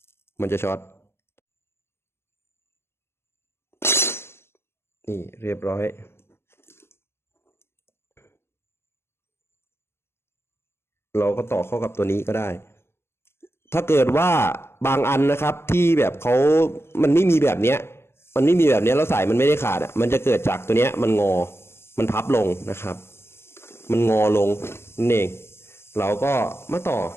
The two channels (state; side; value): late; right; 0.12 ms